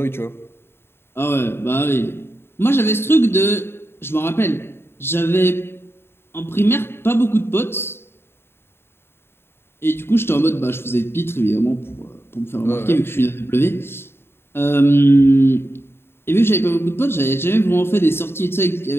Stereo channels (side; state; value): right; late; 0.11 ms